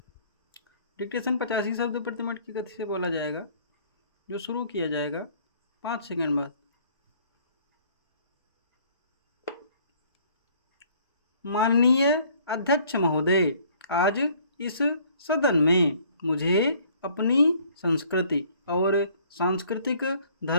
डिक्टेशन 85 शब्द प्रति मिनट की गति से बोला जाएगा, जो शुरू किया जाएगा 5 सेकंड बाद। माननीय अध्यक्ष महोदय, आज इस सदन में मुझे अपनी संस्कृति और सांस्कृतिक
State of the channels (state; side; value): inverted; both; correlation -0.58